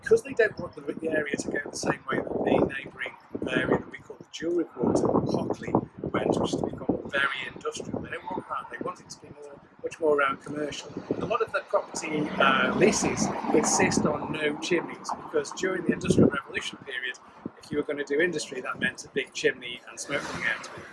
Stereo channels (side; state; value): both; identical; correlation 1.00